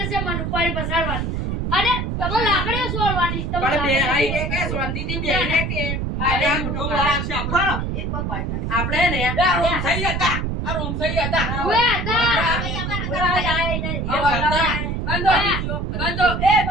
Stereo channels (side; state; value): right; noise; rumble, 2 dB below the sound